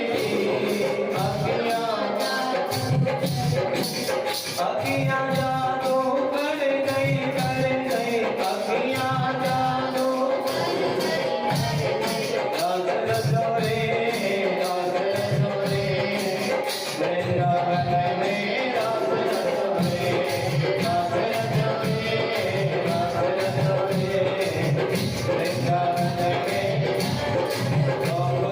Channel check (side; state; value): both; identical; correlation 1.00